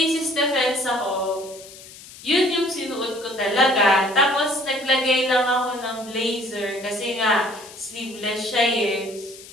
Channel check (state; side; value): noise; left; hiss, 18 dB below the sound